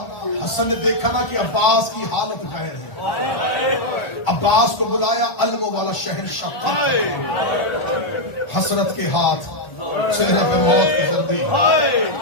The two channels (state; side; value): late; right; 1.4 ms